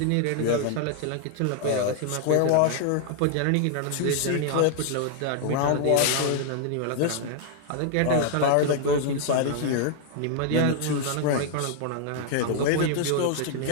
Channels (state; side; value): different; both; correlation 0.00